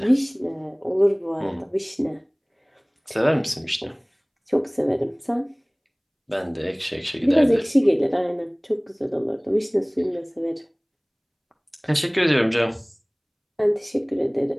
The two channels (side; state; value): both; identical; correlation 1.00